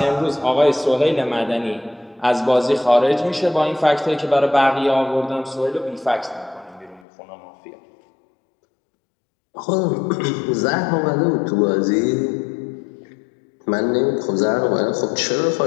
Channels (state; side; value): drops out; right; at 7.1 s